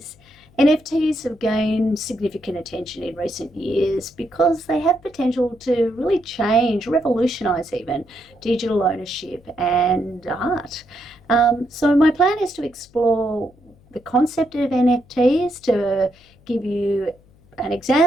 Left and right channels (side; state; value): left; noise; hum, 29 dB below the sound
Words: NFTs have gained significant attention in recent years because they have potential to really change, revolutionize even, digital ownership and art. So my plan is to explore the concept of NFTs, to give you an